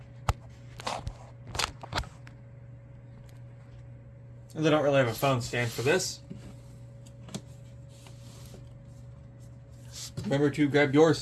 They don't really have a phone stand for this. Remember to grab your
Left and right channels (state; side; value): identical; both; correlation 1.00